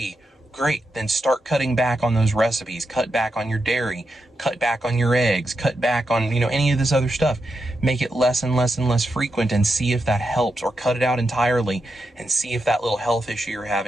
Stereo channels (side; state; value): both; normal; correlation 0.86